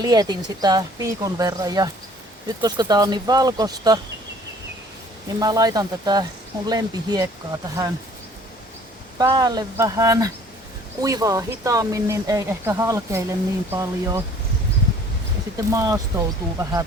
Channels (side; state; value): both; normal; correlation 0.54